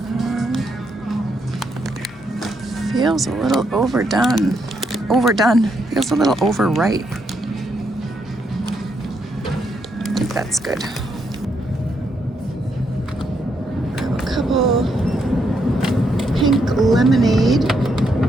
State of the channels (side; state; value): both; normal; correlation 0.78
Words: Feels a little overdone. Feels a little overripe. I think that's good. Grab a couple pink lemonade.